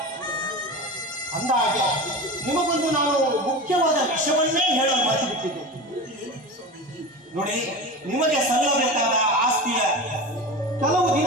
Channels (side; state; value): both; normal; correlation 0.29